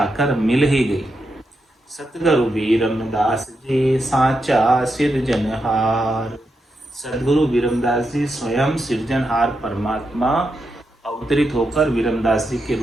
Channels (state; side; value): normal; both; correlation 0.85